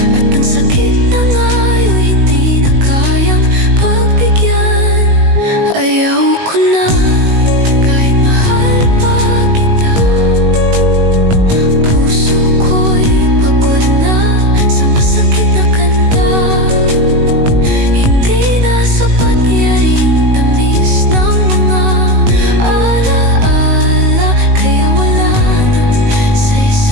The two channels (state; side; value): late; left; 19 ms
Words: at ang sakit na ngayon hindi na kayang pagbigyan. Ayaw ko na kahit mahal pa kita. Puso ko'y pagod na sa masakit na kanta. Hindi na sapat yaring tamis ng mga alaala, kaya wala nang